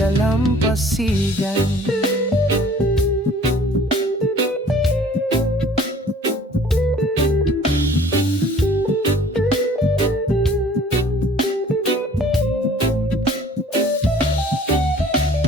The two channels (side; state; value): both; normal; correlation 0.52